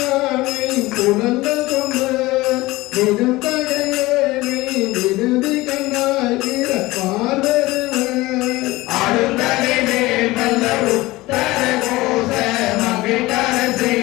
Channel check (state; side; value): quieter; right; 19.7 dB